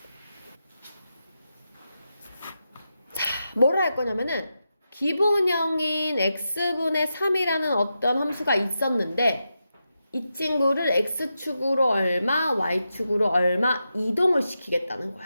뭐를 할 거냐면은 기본형인 x분의 3이라는 어떤 함수가 있었는데 이 친구를 x축으로 얼마, y축으로 얼마 이동을 시키겠다는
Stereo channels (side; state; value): both; inverted; correlation -0.88